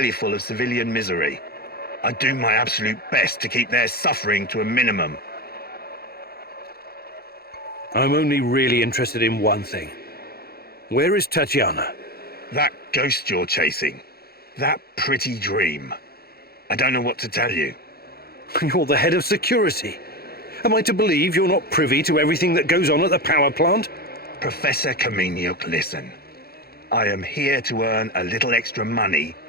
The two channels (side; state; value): right; late; 0.45 ms